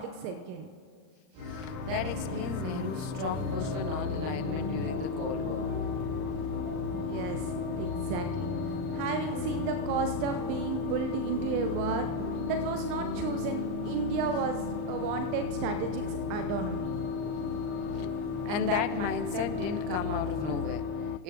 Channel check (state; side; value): late; left; 39 ms